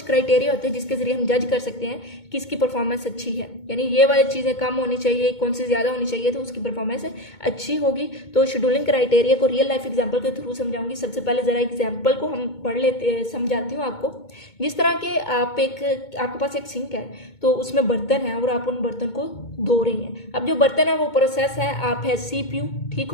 क्राइटेरिया होते हैं जिसके जरिए हम जज कर सकते हैं कि इसकी परफॉर्मेंस अच्छी है, यानी ये वाली चीज़ें कम होनी चाहिए, कौन सी ज़्यादा होनी चाहिए, तो उसकी परफॉर्मेंस अच्छी होगी। तो शेड्यूलिंग क्राइटेरिया को रियल लाइफ एग्जांपल के थ्रू समझाऊंगी। सबसे पहले जरा एग्जांपल को हम पढ़ लेते समझाती हूँ आपको। जिस तरह के आपके पास एक सिंक है, तो उसमें बर्तन है और आप उन बर्तन को धो रही हैं। अब जो बर्तन है वो प्रोसेस है आप है CPU, ठीक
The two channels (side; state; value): right; late; 2.2 ms